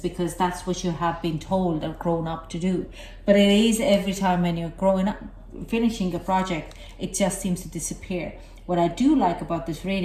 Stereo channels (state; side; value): identical; both; correlation 1.00